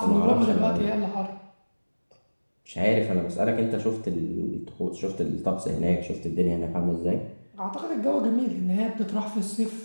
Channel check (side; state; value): both; inverted; correlation -1.00